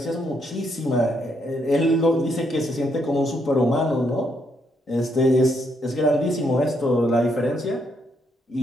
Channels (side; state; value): both; normal; correlation 0.75